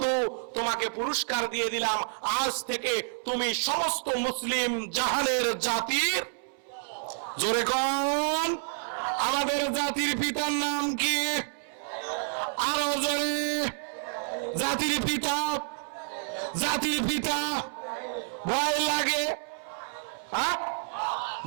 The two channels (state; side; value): silent; left; 58 dB below the other